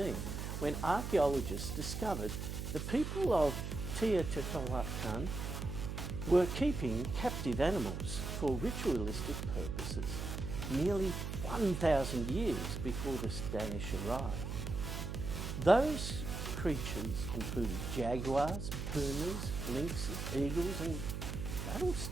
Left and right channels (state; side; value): noise; right; hum, 4 dB below the sound